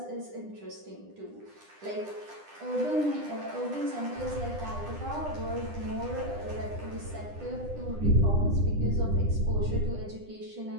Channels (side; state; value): left; late; 9.9 ms